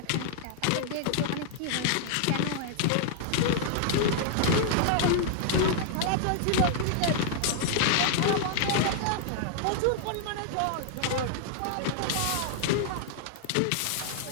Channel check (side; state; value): both; different; correlation -0.01